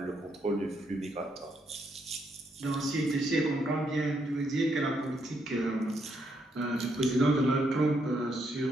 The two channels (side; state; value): both; normal; correlation 0.76